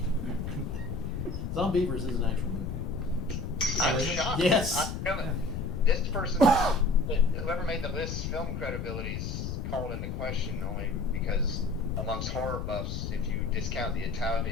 Zombievers is an actual movie. I'm shocked. Yes. This person, whoever made the list, film credibility is called into question only because amongst horror buffs, if you discount the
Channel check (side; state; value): left; noise; rumble, 4 dB below the sound